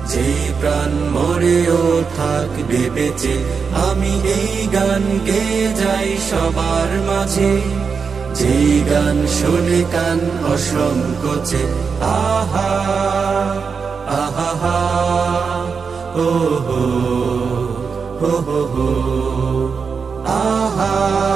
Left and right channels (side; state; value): left; quieter; 5.6 dB